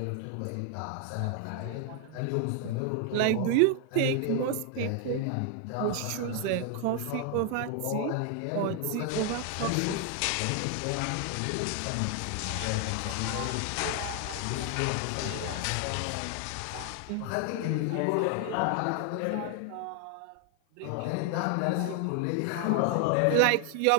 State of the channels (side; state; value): both; different; correlation 0.00